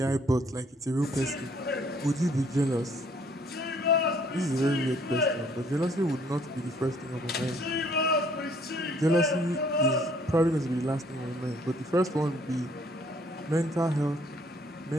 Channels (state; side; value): normal; both; correlation 0.62